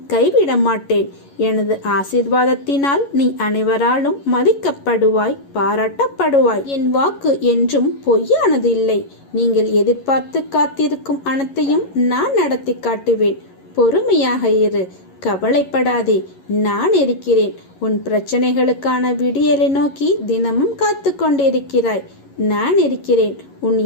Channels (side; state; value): right; late; 11 ms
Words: கைவிட மாட்டேன். எனது ஆசீர்வாதத்தினால் நீ அனைவராலும் மதிக்கப்படுவாய், பாராட்டப்படுவாய். என் வாக்கு என்றும் பொய்யானது இல்லை. நீங்கள் எதிர்பார்த்து காத்திருக்கும் அனைத்தையும் நான் நடத்தி காட்டுவேன். பொறுமையாக இரு, கவலைப்படாதே. நான் இருக்கிறேன். உன் பிரச்சனைகளுக்கான விடியலை நோக்கி தினமும் காத்து கொண்டிருக்கிறாய். நான் இருக்கிறேன். உன்